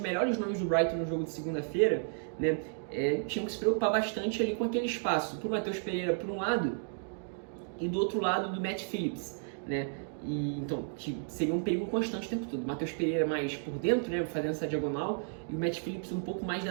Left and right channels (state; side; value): silent; left; digital silence